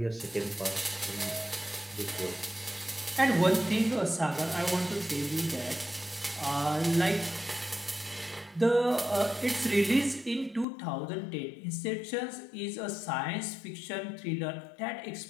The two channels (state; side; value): drops out; right; at 10.7 s